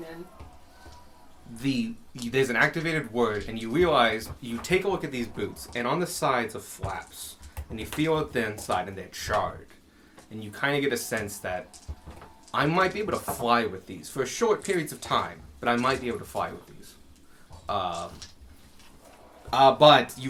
there's an activated word, and you realize you take a look at these boots, and on the sides are flaps, and you feel it the inside, and they're charred, and you kind of get a sense that I might be able to fly with these for short periods of time, but I might be able to fly with these. But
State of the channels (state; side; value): identical; both; correlation 1.00